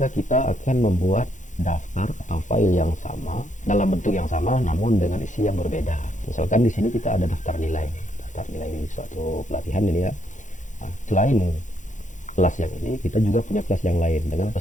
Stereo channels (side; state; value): right; late; 0.36 ms